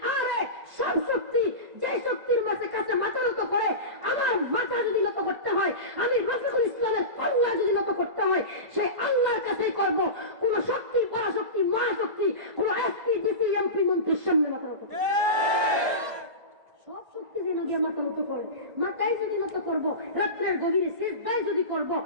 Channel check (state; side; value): late; left; 1.5 ms